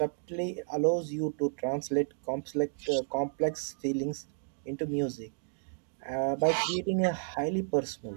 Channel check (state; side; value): silent; left; digital silence